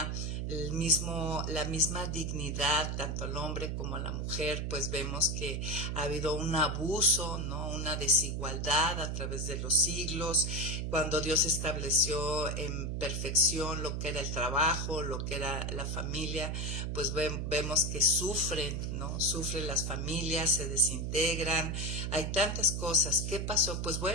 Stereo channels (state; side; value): noise; right; hum, 2 dB below the sound